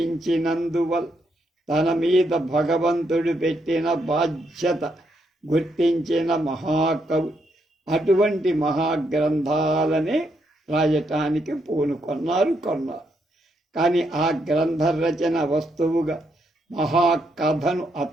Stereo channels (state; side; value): normal; both; correlation 0.78